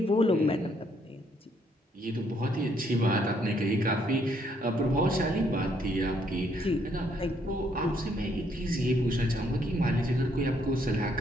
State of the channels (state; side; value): normal; both; correlation 0.70